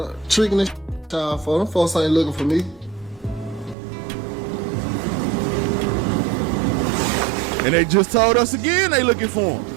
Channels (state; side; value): drops out; left; at 3.8 s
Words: tricking this child for them. Folks ain't looking for me. And they just told us again they looking for him.